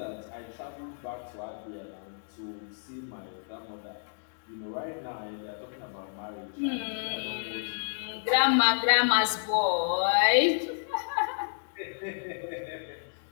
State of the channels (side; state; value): right; silent; digital silence